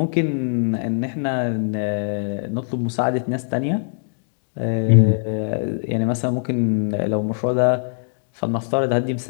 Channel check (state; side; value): silent; right; digital silence